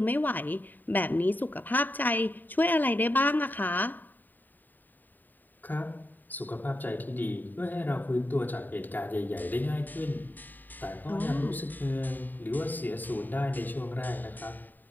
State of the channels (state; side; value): late; right; 0.089 ms